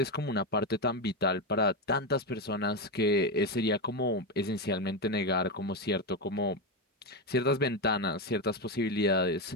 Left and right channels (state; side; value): normal; both; correlation 0.10